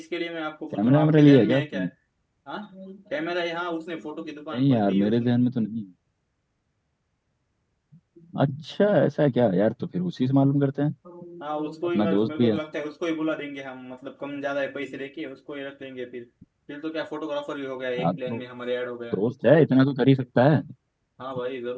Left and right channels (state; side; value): identical; both; correlation 1.00